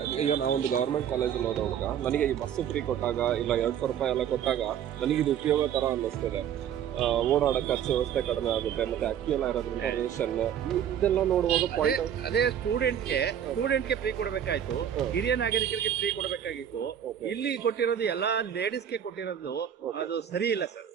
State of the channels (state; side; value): quieter; left; 9.4 dB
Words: ಈಗ ನಾವೊಂದು ಗವರ್ಮೆಂಟ್ ಕಾಲೇಜಲ್ಲಿ ಓದೋವಾಗ ನನಗೆ ಈ ಬಸ್ ಫ್ರೀ ಕೊಟ್ಟಾಗ ಇಲ್ಲ 200 ರೂಪಾಯಿ ಎಲ್ಲ ಕೊಟ್ಟಾಗ ನನಗೆ ಇದು ಉಪಯೋಗ ತರ ಅನ್ನಿಸ್ತದೆ. ಓಡಾಡೋ ಖರ್ಚು ವ್ಯವಸ್ಥೆ ಕಡಿಮೆ ಆಗುತ್ತೆ, ಮತ್ತೆ ಅಕ್ಕಿ ಎಲ್ಲ ಇರೋದ್ರಿಂದ ರೇಷನ್ ಇದೆಲ್ಲ ನೋಡುವಾಗ ಅದೇ ಸ್ಟೂಡೆಂಟ್ಗೆ ಫ್ರೀ ಕೊಡಬೇಕಾಯ್ತು, ಹಿರಿಯ ನಾಗರಿಕರಿಗೆ ಫ್ರೀ ಕೊಡಬೇಕಾಗಿತ್ತು. ಇಲ್ಲಿ ಕೊಟ್ಟಿರೋದು ಎಲ್ಲಾ ಲೇಡೀಸ್ಗೆ ಕೊಟ್ಟಿರೋದು ಅದು ಸರಿ ಇಲ್ಲ ಸರ್.